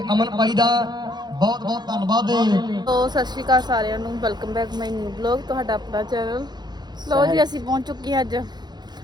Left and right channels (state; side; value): late; left; 0.21 ms